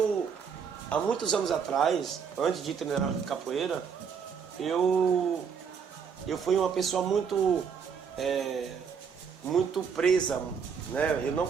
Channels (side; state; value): left; quieter; 6.6 dB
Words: há muitos anos atrás, antes de treinar capoeira, eu fui uma pessoa muito presa, né? Eu não